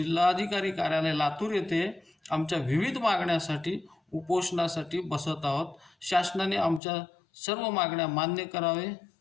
कार्यालय लातूर येथे आमच्या विविध मागण्यासाठी उपोषणासाठी बसत आहोत. शासनाने आमच्या सर्व मागण्या मान्य करावे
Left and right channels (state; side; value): drops out; right; at 6.8 s